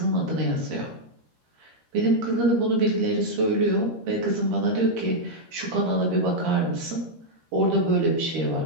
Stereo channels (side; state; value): left; late; 13 ms